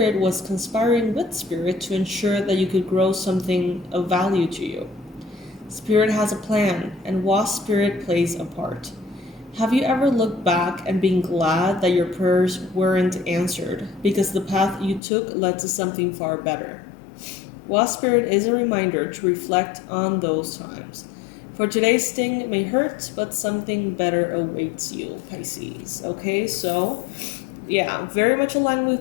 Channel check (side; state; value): right; drops out; at 15.0 s